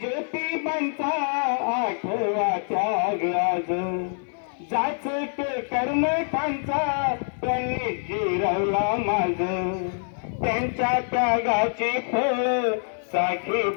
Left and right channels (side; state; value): right; silent; 61 dB below the other